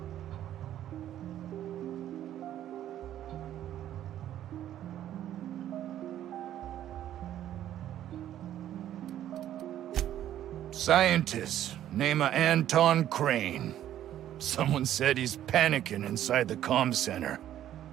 Scientist, name of Anton Crane. Someone said he's panicking inside the comm center.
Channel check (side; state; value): left; quieter; 11.8 dB